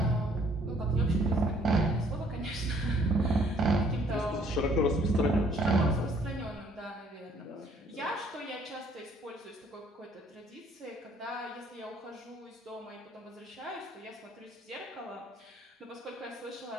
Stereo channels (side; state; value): both; normal; correlation 0.61